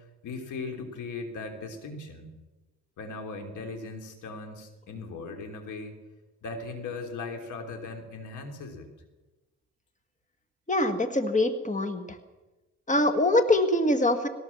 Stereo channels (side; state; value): both; normal; correlation 0.34